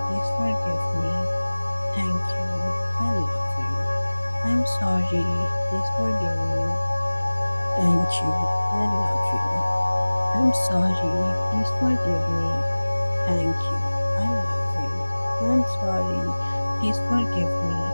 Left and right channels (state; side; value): inverted; both; correlation -1.00